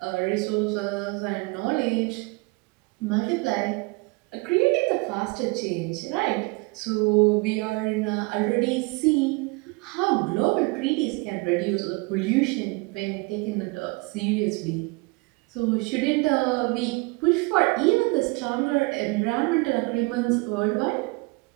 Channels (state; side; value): quieter; left; 27.0 dB